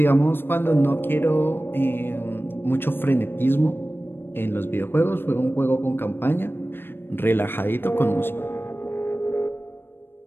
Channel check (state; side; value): late; right; 0.10 ms